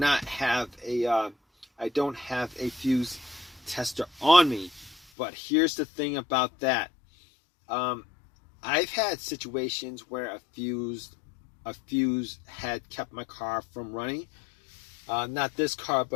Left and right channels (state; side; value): drops out; right; at 5.0 s